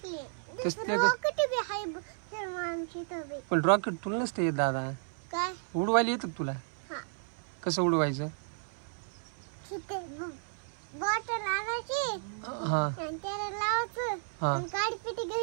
तसले रॉकेट बी हाय श्रीमामची तर. पण रॉकेट तुला नसते येत दादा. काय उडवायला येतं तुला? हा. कसं उडवायचं? बॉटल आणायची हा आणि त्याला लावायचं हा आणि काडी पिटी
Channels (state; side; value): silent; left; 56 dB below the other